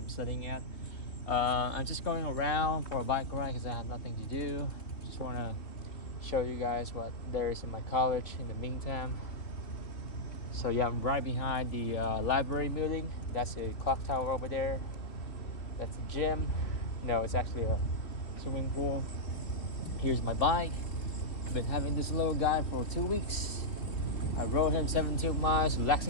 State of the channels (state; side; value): late; right; 3.3 ms